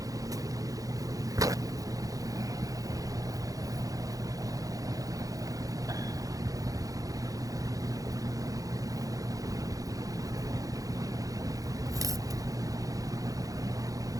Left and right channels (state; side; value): late; left; 0.17 ms